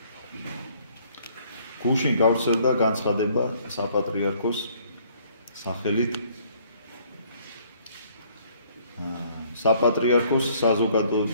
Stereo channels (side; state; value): both; inverted; correlation -0.62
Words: გუშინ გავრცელდა განცხადება საპატრიარქოს სახელით საპატრიარქოს